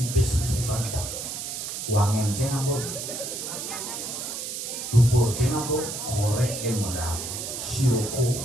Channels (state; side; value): noise; right; hiss, 5 dB below the sound